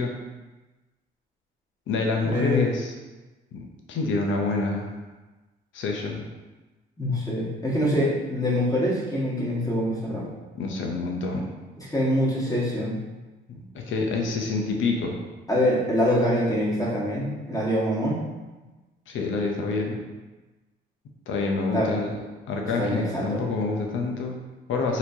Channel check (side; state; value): both; normal; correlation 0.54